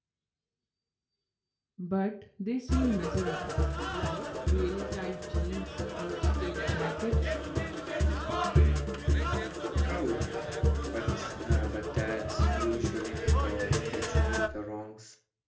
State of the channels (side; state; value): both; identical; correlation 1.00